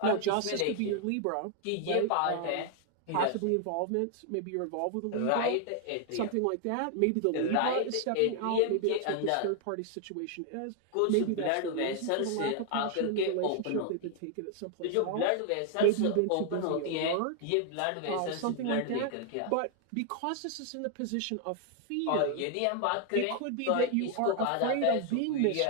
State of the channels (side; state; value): both; different; correlation 0.00